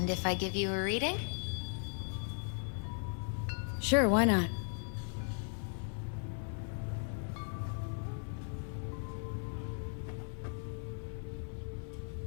if I give you a reading? Sure, why not?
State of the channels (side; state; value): right; silent; 53 dB below the other